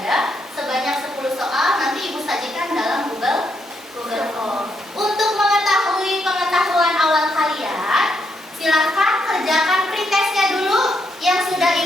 sebanyak 10 soal, nanti Ibu sajikan dalam Google Form. Untuk mengetahui pengetahuan awal kalian, silahkan kerjakan pretestnya dulu yang sudah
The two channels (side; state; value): both; normal; correlation 0.78